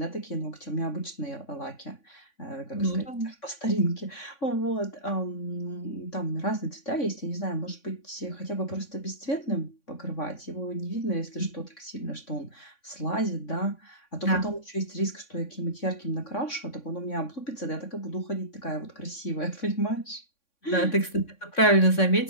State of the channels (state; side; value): late; right; 3.6 ms